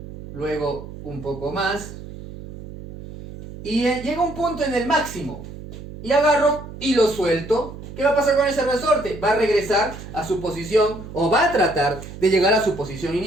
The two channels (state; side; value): noise; right; hum, 13 dB below the sound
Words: luego un poco más, y llega un punto en el máximo, y agarro y lo suelto. ¿Qué va a pasar con ese resorte? Va a regresar a su posición, o va a tratar de llegar a su posición